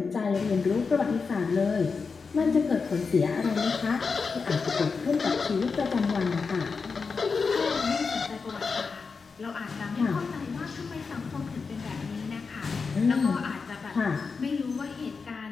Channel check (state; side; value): quieter; right; 4.9 dB